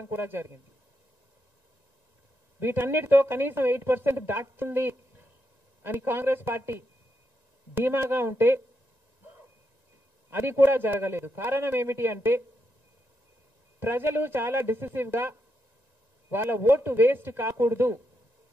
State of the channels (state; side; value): late; right; 1.9 ms